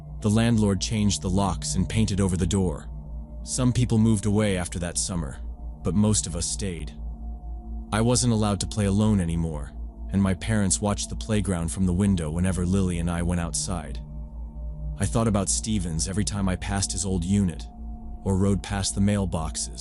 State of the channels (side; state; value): both; identical; correlation 1.00